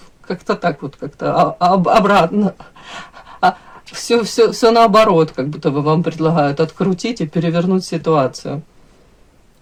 как-то так вот, как-то обратно. Все наоборот, как будто бы вам предлагают открутить и перевернуть ситуацию.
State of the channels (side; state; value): both; identical; correlation 1.00